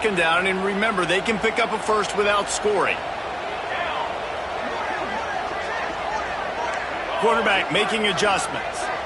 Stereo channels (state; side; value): identical; both; correlation 1.00